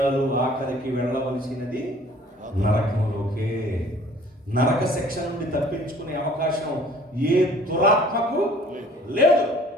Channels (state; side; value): normal; both; correlation 0.52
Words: ఆఖరికి వెళ్ళవలసినది నరకంలోకే. నరక శిక్ష నుండి తప్పించుకునే అవకాశం ఏ దురాత్మకు లేదు.